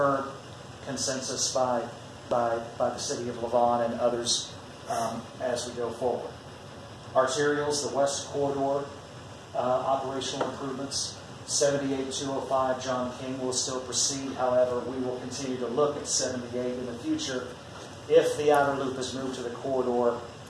consensus by the City of Lavon and others as we go forward. Arterials, the West Corridor operational improvements, 78-205 John King will still proceed. However, we will continue to look at 78 in the future if the outer loop is moved to the corridor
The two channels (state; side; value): identical; both; correlation 1.00